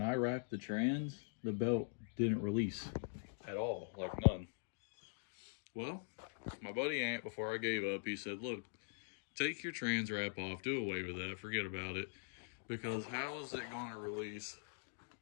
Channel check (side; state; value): right; silent; digital silence